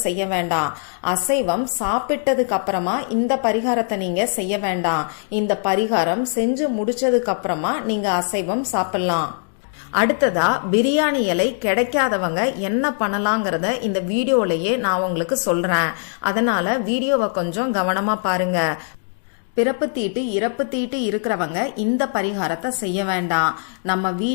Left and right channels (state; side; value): silent; right; 65 dB below the other